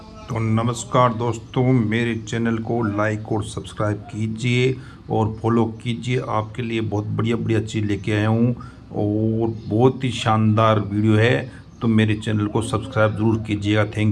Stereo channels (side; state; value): both; identical; correlation 1.00